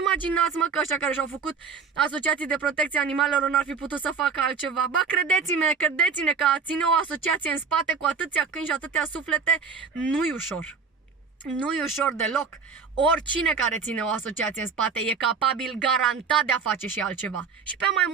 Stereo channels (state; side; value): quieter; left; 5.6 dB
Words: mă, că ăștia care și-au făcut asociații de protecție animalelor n-ar fi putut să facă altceva. Ba, credeți-ne că a ține o asociație în spate cu atâția câini și atâtea suflete nu-i ușor. Nu-i ușor deloc. Oricine care ține o asociație în spate e capabil garantat de a face și altceva. Și pe mai